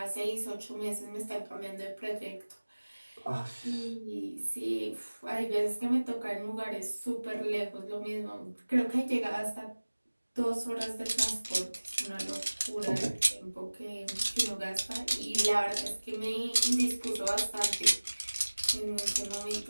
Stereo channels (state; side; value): inverted; both; correlation -1.00